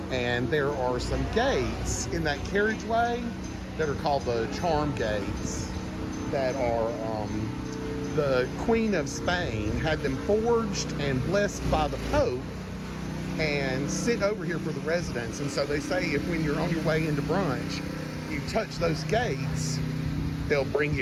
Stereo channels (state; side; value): identical; both; correlation 1.00